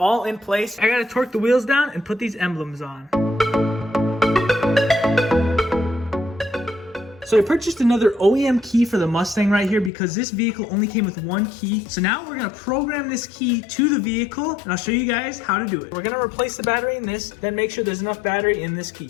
in place, I gotta torque the wheels down and put these emblems on. So I purchased another OEM key for the Mustang right here because this vehicle only came with one key. So now we're gonna program this key to the vehicle, and I'll show you guys how to do it. We're gonna replace the battery in this, then make sure there's enough battery in this key.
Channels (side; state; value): right; drops out; at 9.9 s